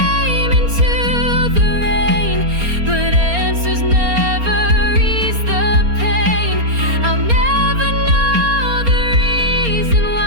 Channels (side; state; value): left; late; 4.3 ms